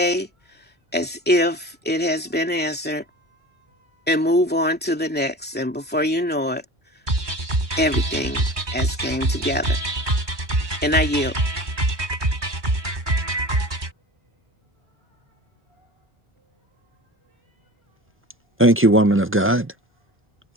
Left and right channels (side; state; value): both; normal; correlation 0.36